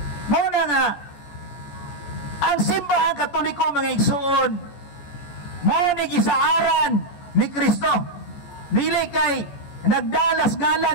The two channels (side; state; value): right; late; 14 ms